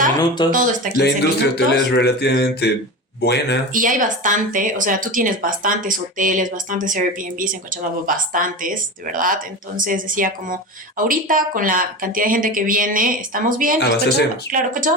minutos, todo está a 15 minutos. La industria hotelera es relativamente buena. Y hay bastante, o sea, tú tienes bastantes hoteles, bastantes Airbnbs en Cochabamba, bastantes, de verdad. Entonces decía como, ahorita con la cantidad de gente que viene, estamos bien. Claro,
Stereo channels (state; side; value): normal; both; correlation 0.27